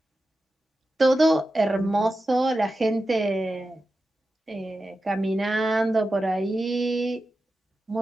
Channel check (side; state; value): both; normal; correlation 0.92